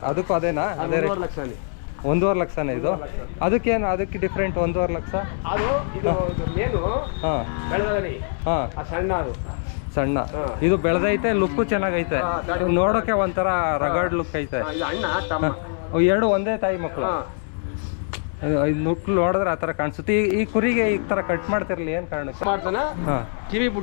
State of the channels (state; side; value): silent; right; 60 dB below the other